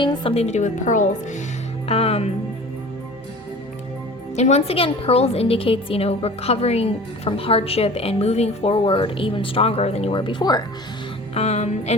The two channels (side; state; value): both; normal; correlation 0.41